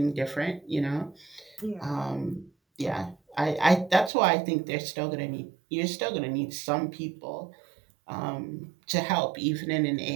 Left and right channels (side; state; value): left; drops out; at 4.1 s